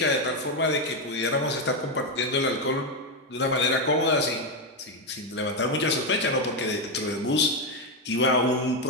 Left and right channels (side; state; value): both; normal; correlation 0.06